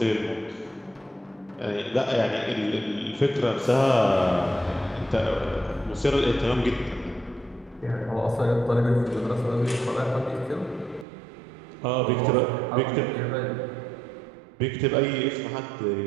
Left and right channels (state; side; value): drops out; left; at 11.1 s